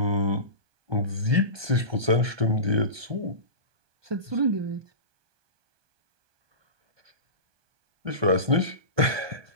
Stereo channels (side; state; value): left; late; 1.2 ms